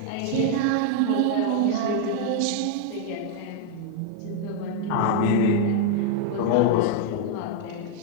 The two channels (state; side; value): different; both; correlation 0.00